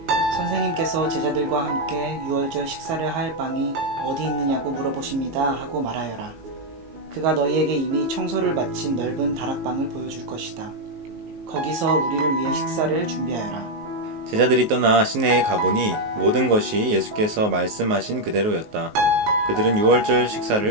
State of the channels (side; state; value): left; late; 19 ms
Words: 선생님께서 제자들과 함께 유월절 식사를 할 방이 어디 있느냐고 물어보십니다 하고 말하여라. 그가 너희에게 이미 청소를 마친 넓은 다락방을 보여줄 것이다. 거기서 우리를 위해 식사를 준비하여라. 제자들이 떠나 시내에 가보니 모든 것이 예수께서 말씀하신 그대로였다. 그들은 유월절